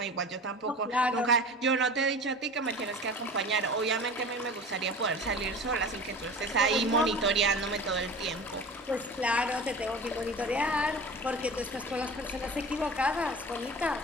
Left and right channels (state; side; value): normal; both; correlation 0.36